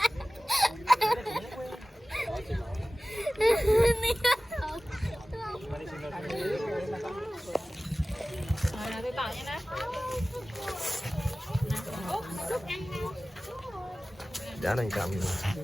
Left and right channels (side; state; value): both; normal; correlation 0.97